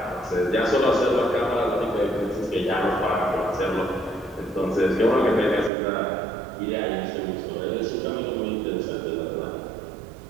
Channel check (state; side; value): drops out; left; at 5.7 s